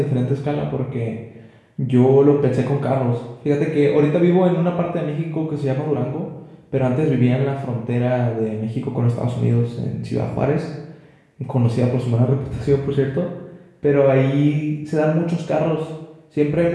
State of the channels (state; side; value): identical; both; correlation 1.00